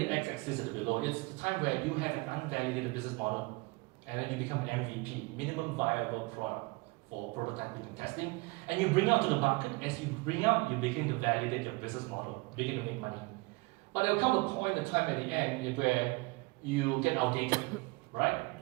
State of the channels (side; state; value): left; quieter; 25.9 dB